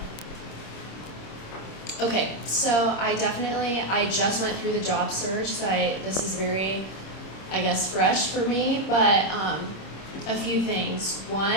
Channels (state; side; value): late; right; 26 ms